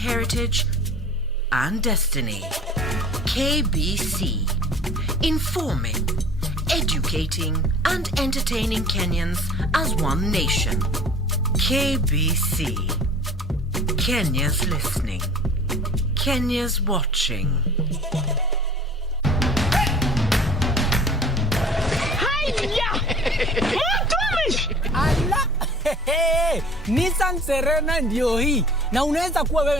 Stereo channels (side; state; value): both; normal; correlation 0.46